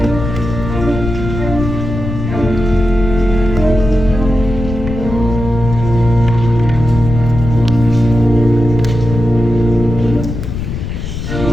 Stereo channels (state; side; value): noise; left; rumble, 6 dB below the sound